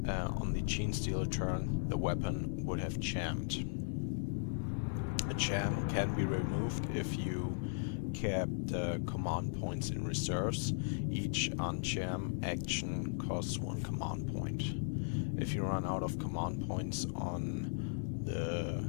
the Gene Stealer turn, the weapon would have jammed. A jam can be removed if you kept command points in reserves. Each unjam action costs 1 command point. If you run out of command points on the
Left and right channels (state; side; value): silent; right; digital silence